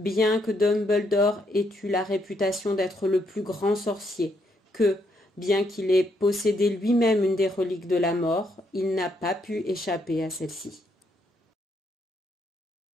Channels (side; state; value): both; normal; correlation 0.75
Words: que Dumbledore ait eu la réputation d'être le plus grand sorcier, que, bien qu'il ait possédé lui-même une des reliques de la mort, il n'a pas pu échapper à celle-ci.